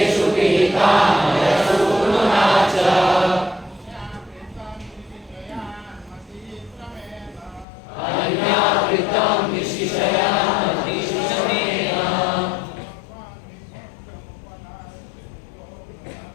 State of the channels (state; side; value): drops out; right; at 7.7 s